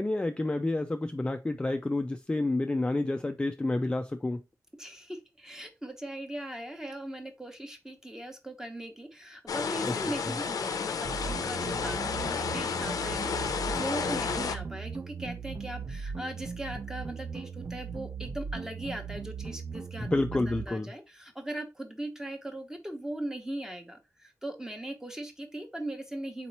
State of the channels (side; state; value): both; normal; correlation 0.78